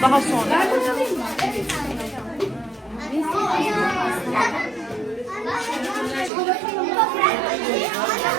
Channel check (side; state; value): left; drops out; at 6.3 s